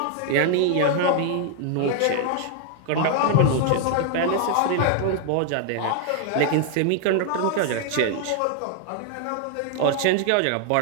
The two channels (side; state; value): both; different; correlation 0.00